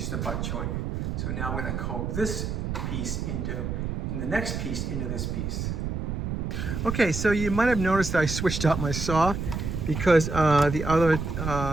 the butt joint. So now we're gonna cope this piece and the next piece into this piece. Okay, so you might have noticed that I switched out my saw because the other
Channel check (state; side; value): noise; right; rumble, 3 dB below the sound